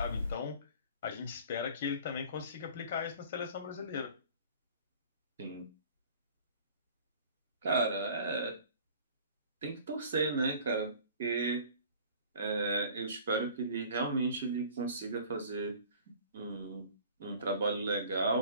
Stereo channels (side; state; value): both; inverted; correlation -0.47